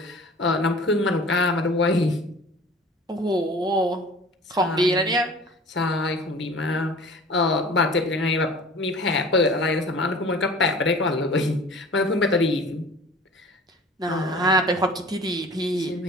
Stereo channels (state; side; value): normal; both; correlation 0.44